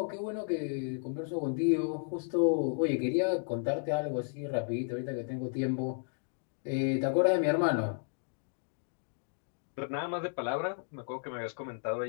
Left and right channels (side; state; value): right; silent; digital silence